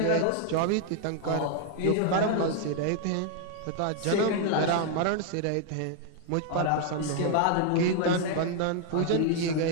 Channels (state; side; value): different; both; correlation 0.00